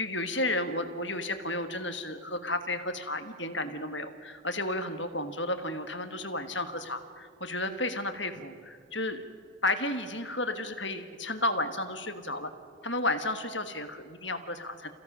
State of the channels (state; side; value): normal; both; correlation -0.03